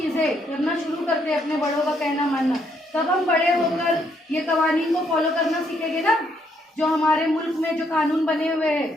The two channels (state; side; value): normal; both; correlation 0.72